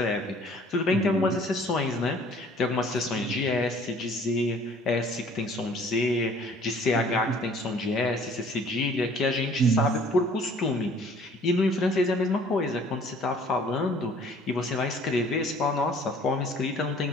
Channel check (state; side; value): normal; both; correlation 0.54